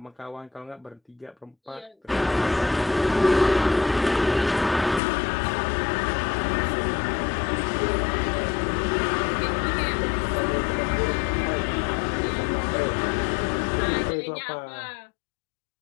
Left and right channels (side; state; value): right; drops out; at 5.0 s